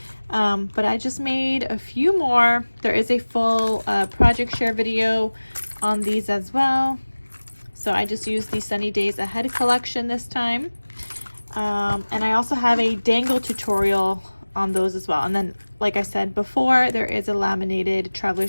But I just made a few more. There is a full project share video on these as well. So I just used the Sunny Days Ahead collection this time. And I also have a dangle tutorial on those as well. And then, like I said before, there is a laminated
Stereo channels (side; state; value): both; inverted; correlation -1.00